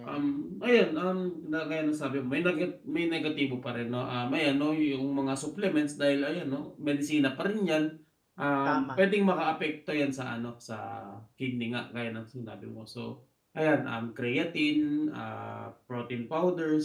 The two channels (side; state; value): both; identical; correlation 1.00